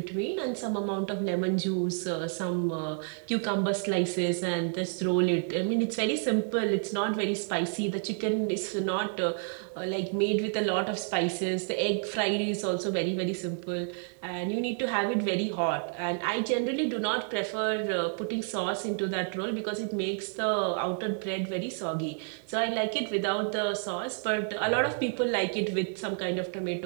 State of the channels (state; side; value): silent; left; 58 dB below the other